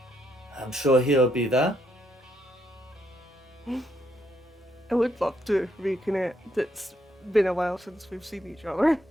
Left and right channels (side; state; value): both; normal; correlation 0.75